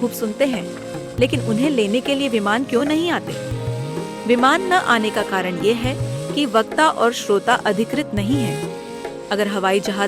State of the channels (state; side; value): identical; both; correlation 1.00